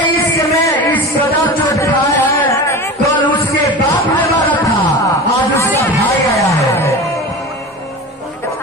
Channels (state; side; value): normal; both; correlation 0.31